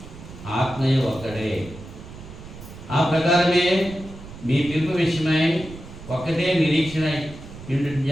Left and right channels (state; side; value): noise; right; rumble, 15 dB below the sound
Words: ఆత్మయు ఒక్కడే. ఆ ప్రకారమే మీ పిలుపు విషయమై ఒక్కటే నిరీక్షణ